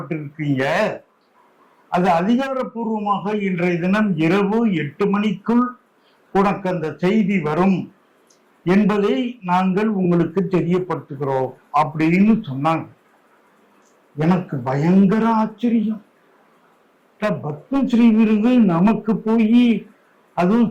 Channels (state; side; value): identical; both; correlation 1.00